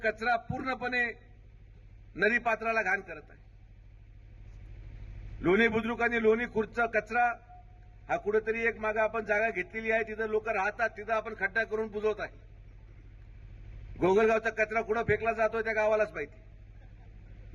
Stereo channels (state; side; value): identical; both; correlation 1.00